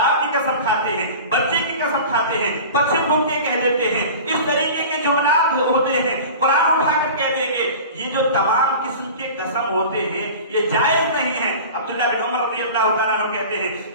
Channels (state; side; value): inverted; both; correlation -0.37